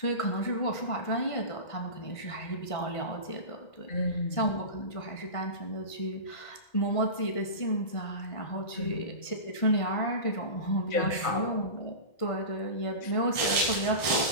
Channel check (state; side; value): late; right; 1.5 ms